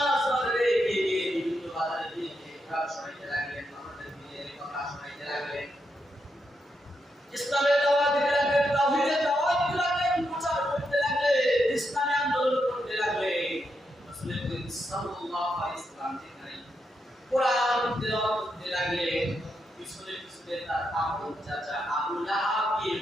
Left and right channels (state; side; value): normal; both; correlation 0.83